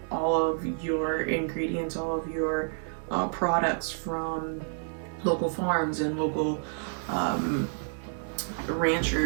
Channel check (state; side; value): silent; left; 58 dB below the other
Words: all of your ingredients, all of your products from local farms and local